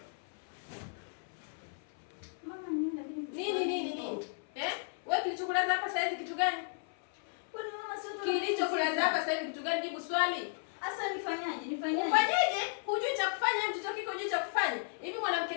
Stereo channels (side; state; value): right; silent; 55 dB below the other